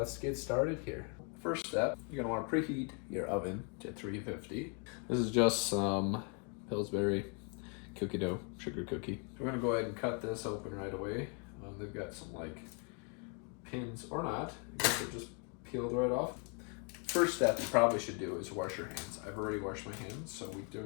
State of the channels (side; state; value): right; quieter; 38.2 dB